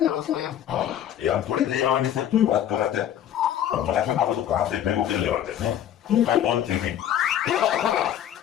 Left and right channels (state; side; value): quieter; right; 10.7 dB